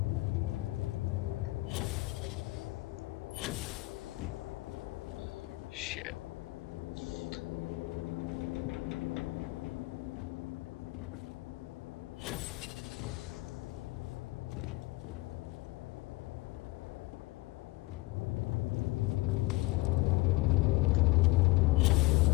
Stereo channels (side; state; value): right; quieter; 21.4 dB